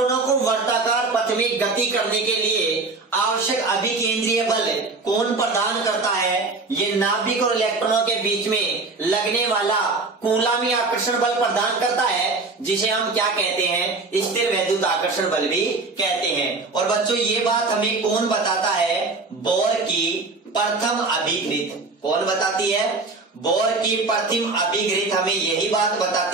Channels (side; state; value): left; quieter; 3.7 dB